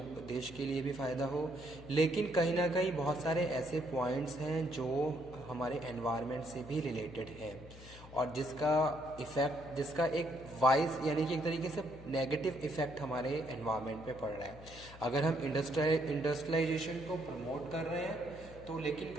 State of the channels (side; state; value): left; noise; hum, 17 dB below the sound